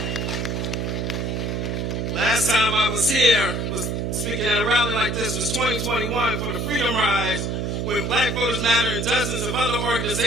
Last time I was here, was speaking at a rally like this, was 2021 for the Freedom Rise, when Black Voters Matter and dozens of other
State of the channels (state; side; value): noise; right; hum, 1 dB below the sound